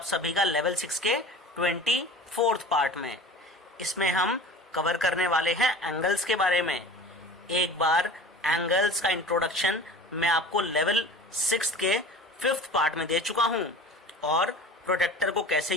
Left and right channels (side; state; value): both; normal; correlation 0.39